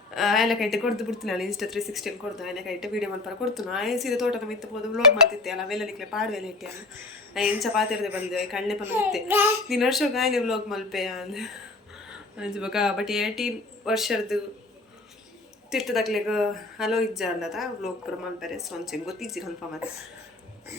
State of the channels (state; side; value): quieter; right; 3.0 dB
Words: ಆಯ್ಲ ಕೈಟೆ ಕೊಡ್ದು ಬಿಡ್ತೀನಿ ಅಲ್ಲ ಇನ್ಸ್ಟಾ 360 ಕೊಡ್ದು ಆಯ್ಲ ಕೈಟೆ ವೀಡಿಯೋ ಮಲ್ಪರ ಕೊಡ್ತು ಸೀದಾ ತೋಟದ ಮಿತ್ತು ಹೋದು ಬ್ಲಾಗ್ ಮಾಡ್ತಿದ್ದೆ ಅಲ್ಲ ಅವೆಲ್ಲಲಿಕ್ಕೆ ಪಾಡುವೆಲ್ಲ ಇಟ್ಟೆ ಅಲ್ಲ ಎಂಚ ಪಾತಿರದೆ ಬಂದೆ ಕಣ್ಣೆ ಪಲ್ಲ ಇತ್ತೆ ನೀನು ವರ್ಷಕ್ಕೆ ಆಯ್ಲೆ ಬ್ಲಾಗ್ ಮಲ್ಪೆ ಅಂದ ಅಂಚ ಬೊಕ್ಕ ಬಟ್ 18 ವರ್ಷದ್ದು ತಿರ್ತದಾಗ್ಲಿಗೆ ಹಲೋ ಇಜ್ಜ ಅಲ್ಲದ ಬ್ಲಾಗ್ ಪುರ ಮಲ್ಪರೆ ಸೊ ಅಂಚೆ ಗೊತ್ತಿಜ್ಜಿ ಕನ್ಫರ್ಮ್ ಅದ